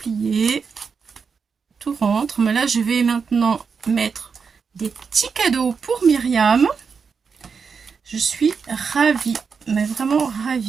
Tout rentre. Mais là, je vais maintenant mettre des petits cadeaux pour Myriam. Je suis ravie, mais vraiment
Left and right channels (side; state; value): left; quieter; 5.7 dB